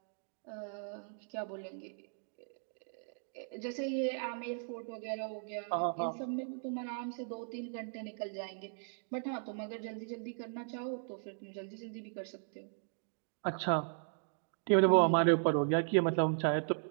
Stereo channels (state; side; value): silent; left; digital silence